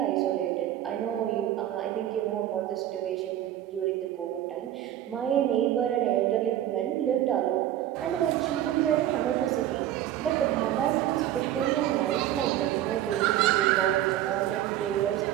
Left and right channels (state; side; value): quieter; left; 12.4 dB